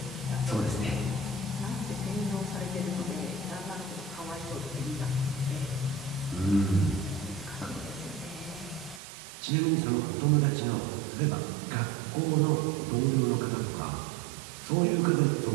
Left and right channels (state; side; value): drops out; left; at 9.0 s